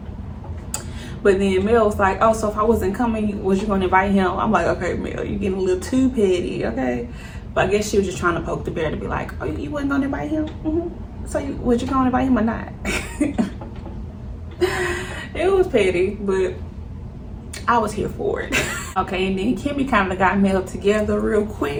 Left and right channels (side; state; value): both; identical; correlation 1.00